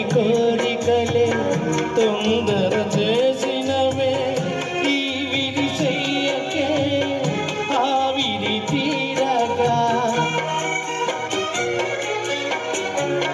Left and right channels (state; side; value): identical; both; correlation 1.00